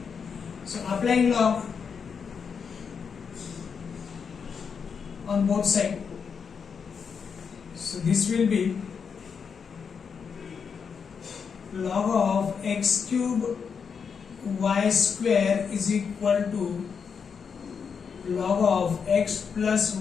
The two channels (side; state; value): right; quieter; 6.3 dB